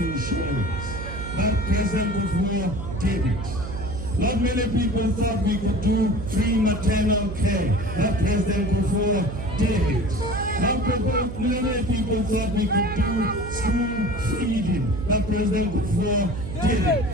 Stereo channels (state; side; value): noise; right; hum, 8 dB below the sound